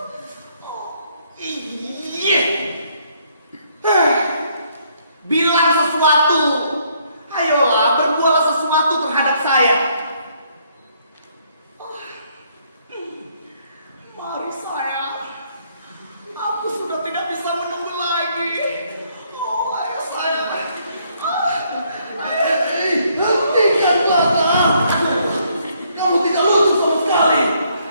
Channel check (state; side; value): inverted; both; correlation -0.69